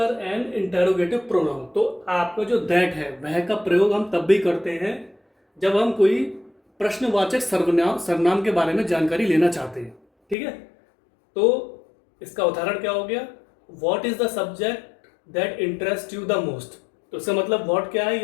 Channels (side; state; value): right; drops out; at 10.4 s